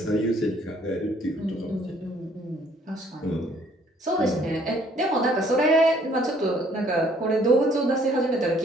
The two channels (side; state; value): both; normal; correlation 0.61